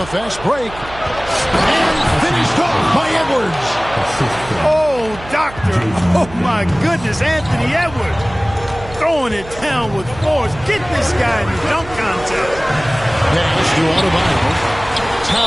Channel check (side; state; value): right; noise; hum, 16 dB below the sound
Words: fast break. And finished off by Edwards. Oh, doctor. Oh, my goodness. Anthony Edwards throwing it down with force. Get this guy in the dunk contest. Pass to Adebayo.